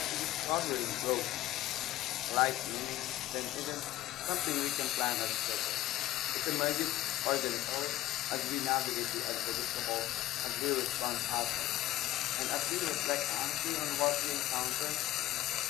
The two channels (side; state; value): right; quieter; 15.0 dB